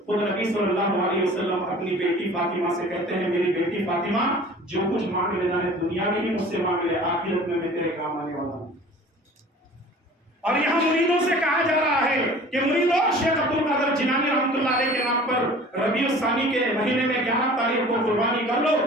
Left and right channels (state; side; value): normal; both; correlation 0.45